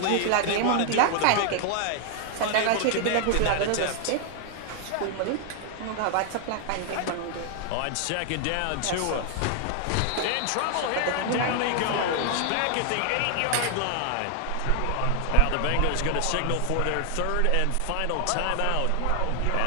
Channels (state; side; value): different; both; correlation 0.00